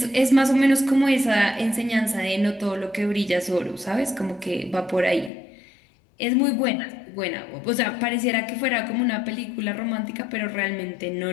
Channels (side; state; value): right; drops out; at 5.3 s